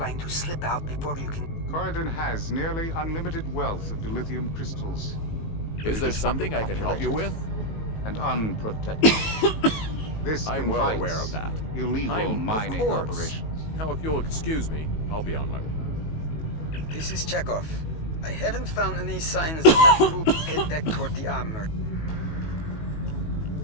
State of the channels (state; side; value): late; right; 19 ms